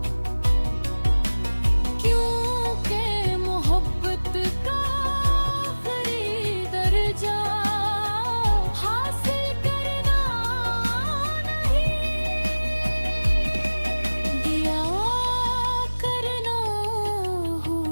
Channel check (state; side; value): inverted; both; correlation -1.00